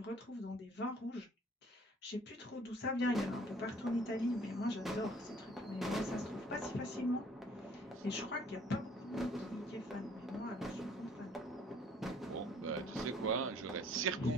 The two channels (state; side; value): normal; both; correlation 0.57